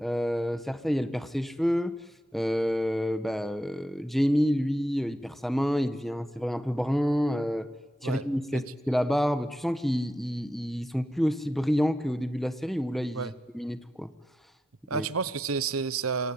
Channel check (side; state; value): both; normal; correlation 0.87